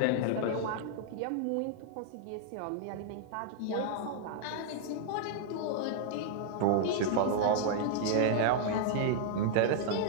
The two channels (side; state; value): both; different; correlation -0.01